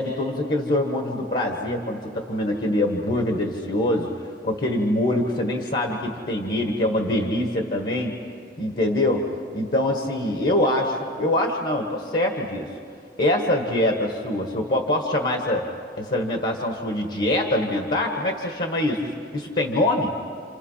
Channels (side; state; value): both; normal; correlation 0.34